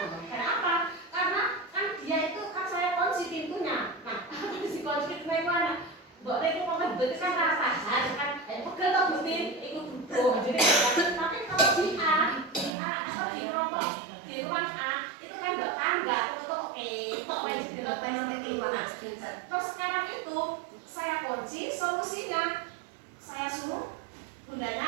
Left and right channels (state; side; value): drops out; left; at 12.7 s